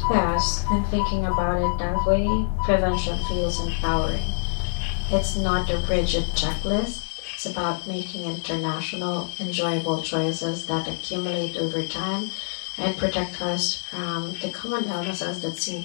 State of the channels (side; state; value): right; silent; digital silence